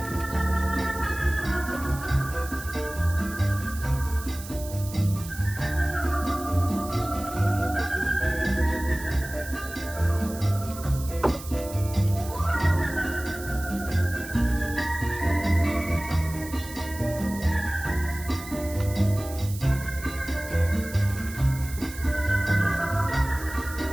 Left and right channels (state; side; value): noise; right; hiss, 14 dB below the sound